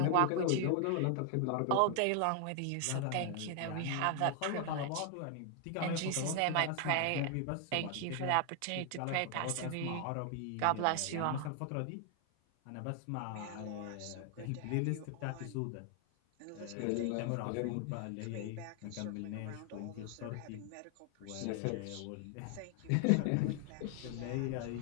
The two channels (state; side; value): different; both; correlation 0.00